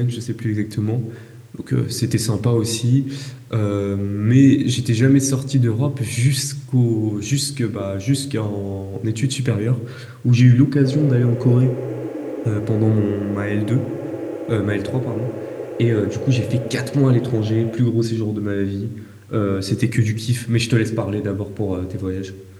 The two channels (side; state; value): both; identical; correlation 1.00